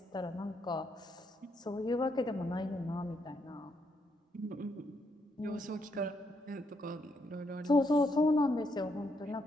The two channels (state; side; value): normal; both; correlation 0.77